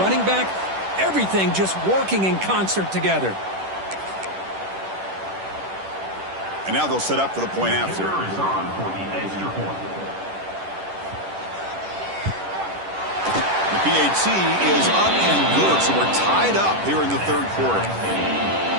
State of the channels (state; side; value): late; left; 10 ms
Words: back, everything just working in concert together. And now they'll set up for the point after. The PAT is up and good, so we're tied up here in the 3rd quarter.